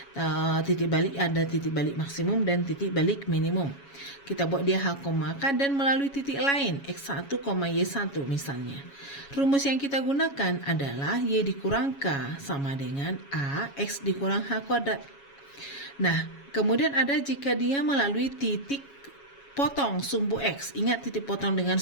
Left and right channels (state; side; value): late; right; 7.2 ms